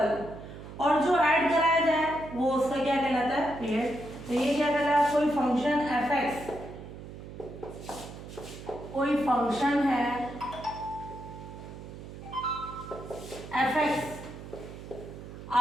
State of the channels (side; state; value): right; noise; hum, 13 dB below the sound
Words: और जो ऐड कराया जाए वो उसका क्या कहलाता है, पीरियड। तो ये क्या कहलाता है, कोई फंक्शन एफ, कोई फंक्शन है एफ,